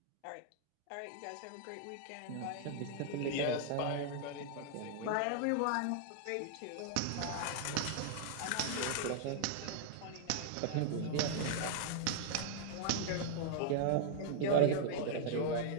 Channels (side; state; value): both; different; correlation -0.01